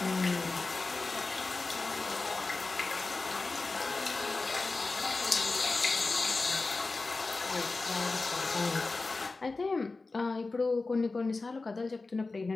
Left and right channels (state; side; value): quieter; right; 3.6 dB